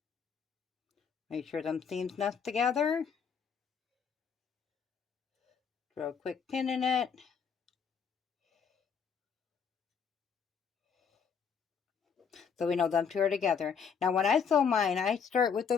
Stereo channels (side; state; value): right; quieter; 6.5 dB